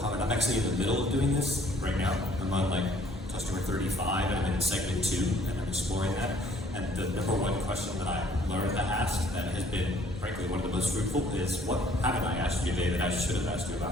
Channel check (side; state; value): both; normal; correlation 0.59